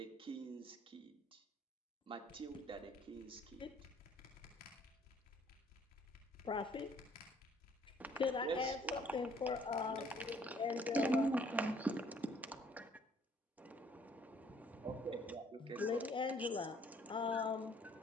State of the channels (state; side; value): normal; both; correlation 0.61